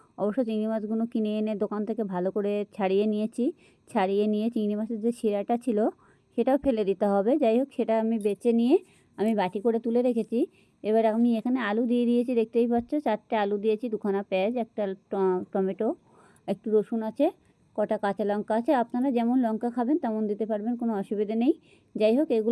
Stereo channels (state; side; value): identical; both; correlation 1.00